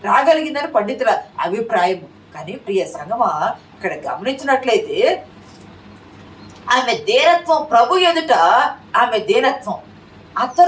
రాగలిగిందని పండితుల అభిప్రాయం. కానీ ప్రియ సంగమా, ఇక్కడ గమనించినట్లయితే ఆమె దీనత్వం, ప్రభు ఎదుట ఆమె దీనత్వం.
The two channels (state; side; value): identical; both; correlation 1.00